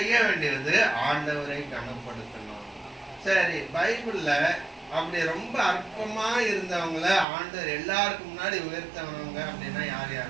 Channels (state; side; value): drops out; left; at 7.2 s